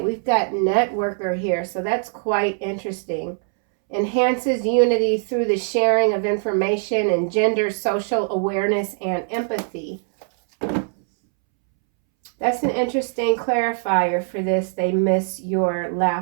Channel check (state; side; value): silent; left; 64 dB below the other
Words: we've got networker here, so that's quite interesting. Enhances unity through the sharing of information and gender social awareness and empathy. That's an interesting clarifier for this. They miss your